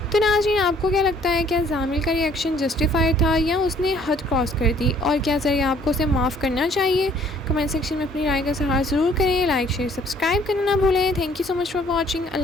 تو ناظرین، آپ کو کیا لگتا ہے، کیا زامل کا ری ایکشن جسٹیفائی تھا یا اس نے حد کراس کر دی، اور کیا زریاب کو اسے معاف کرنا چاہیے؟ کمنٹ سیکشن میں اپنی رائے کا اظہار ضرور کریں۔ لائک، شیئر، سبسکرائب کرنا نہ بھولیں۔ Thank you so much for watching.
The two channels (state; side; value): normal; both; correlation 0.59